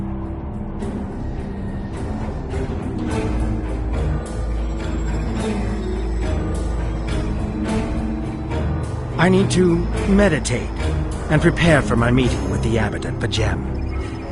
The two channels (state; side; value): identical; both; correlation 1.00